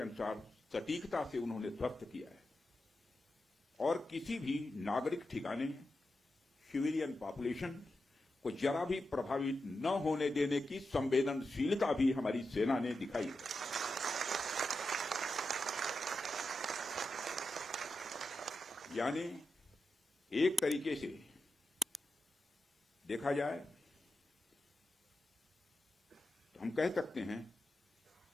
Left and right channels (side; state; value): both; normal; correlation 0.89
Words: सटीकता से उन्होंने ध्वस्त किया है और किसी भी नागरिक ठिकाने, सिविलियन पॉपुलेशन को जरा भी प्रभावित न होने देने की संवेदनशीलता भी हमारी सेना ने दिखाई है। यानी एक तरीके से देखा जाए तो हम कह सकते हैं